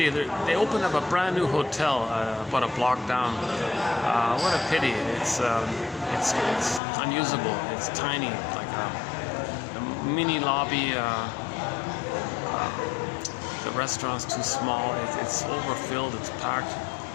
They opened up a brand new hotel about a block down. What a pity. It's unusable. It's tiny, like a mini lobby. The restaurant's too small. It's overfilled. It's packed.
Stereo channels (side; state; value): right; drops out; at 6.8 s